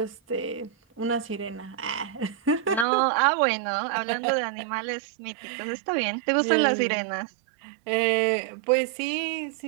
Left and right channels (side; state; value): left; drops out; at 2.9 s